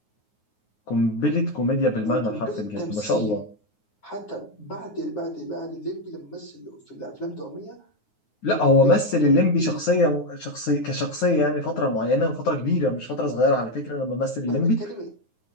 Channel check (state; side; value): late; right; 9.5 ms